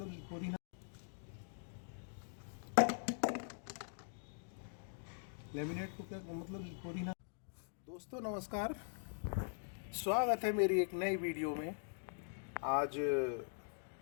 पुदीना, लेमिनेट को क्या मतलब पुदीना। दोस्तों नमस्कार, स्वागत है मेरी एक नई वीडियो में। आज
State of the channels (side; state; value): right; silent; digital silence